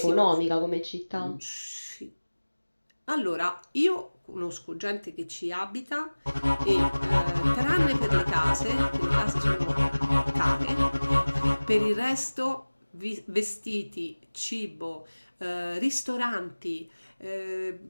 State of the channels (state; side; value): inverted; both; correlation -1.00